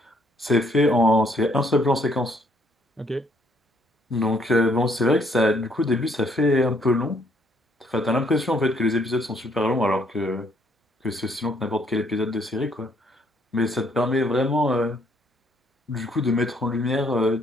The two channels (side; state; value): both; normal; correlation 0.67